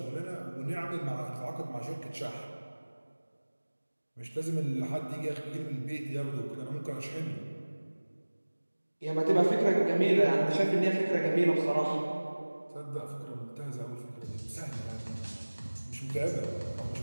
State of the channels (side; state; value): both; inverted; correlation -1.00